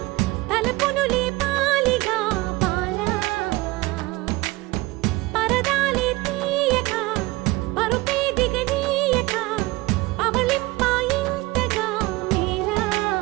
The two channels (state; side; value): quieter; left; 21.1 dB